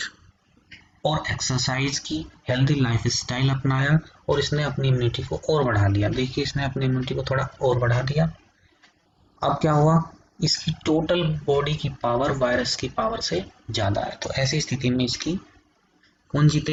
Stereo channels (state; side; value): identical; both; correlation 1.00